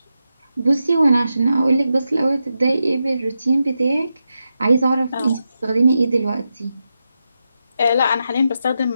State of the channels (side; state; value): both; inverted; correlation -0.88